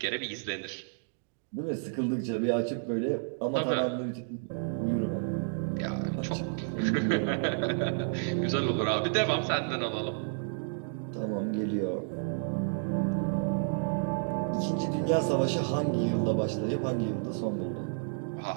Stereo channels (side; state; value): left; silent; digital silence